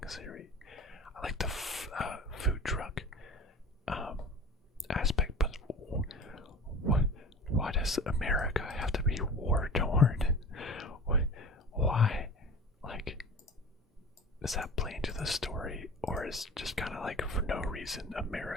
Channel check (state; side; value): normal; both; correlation 0.38